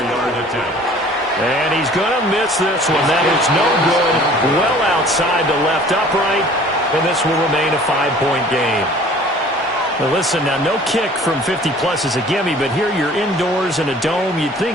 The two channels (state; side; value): normal; both; correlation 0.50